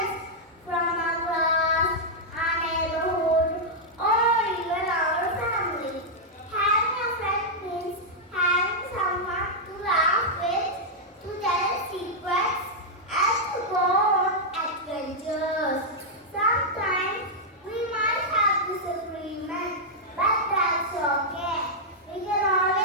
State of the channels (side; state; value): both; normal; correlation -0.05